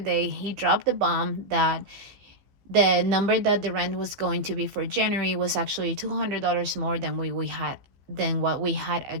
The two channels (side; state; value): left; late; 15 ms